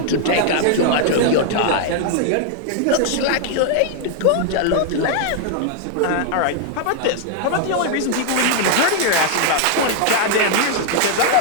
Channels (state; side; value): different; both; correlation 0.00